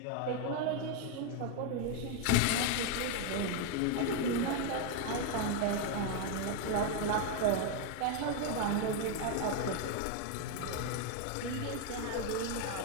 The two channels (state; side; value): different; both; correlation 0.01